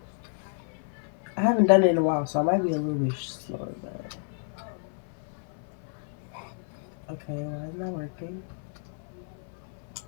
I haven't done it in a while, so I might be a little bit slower, but... Okay, why is it not working?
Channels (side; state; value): right; silent; 58 dB below the other